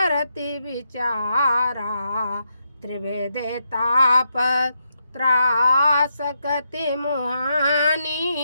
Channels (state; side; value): inverted; both; correlation -0.82